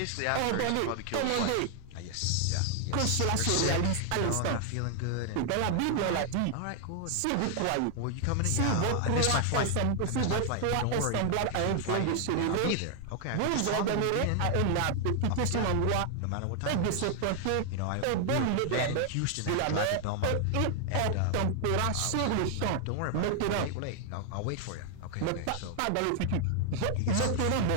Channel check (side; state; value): both; different; correlation 0.00